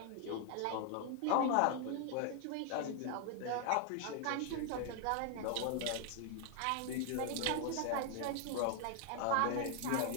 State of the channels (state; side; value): different; both; correlation 0.00